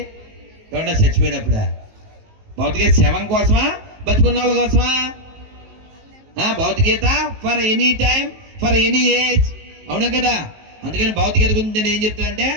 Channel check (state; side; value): late; left; 19 ms